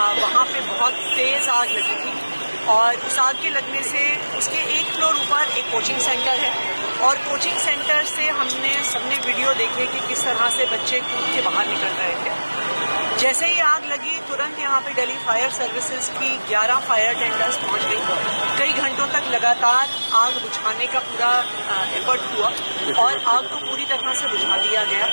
वहाँ पे बहुत तेज़ आग लगी थी और उस आग के लगने से उसके एक फ्लोर ऊपर एक कोचिंग सेंटर है और कोचिंग सेंटर से हमने सबने वीडियो देखे कि किस तरह से बच्चे कूद के बाहर निकल रहे थे। जैसे ही आग लगी तुरंत यहाँ पे दिल्ली फायर सर्विसेज की 11 फायर टेंडर्स पहुँच गई। कई घंटों तक लगातार आग बुझाने का पूरा एफर्ट हुआ और आग को पूरी तरह से बुझा दिया गया।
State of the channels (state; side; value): inverted; both; correlation -1.00